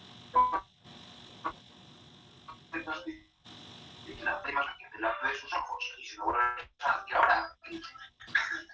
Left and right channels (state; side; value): identical; both; correlation 1.00